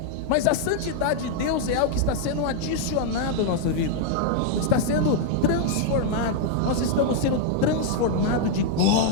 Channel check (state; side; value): different; both; correlation -0.01